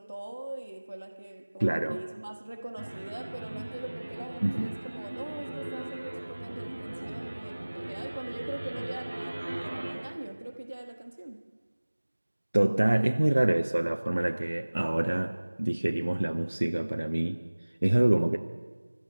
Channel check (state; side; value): inverted; both; correlation -1.00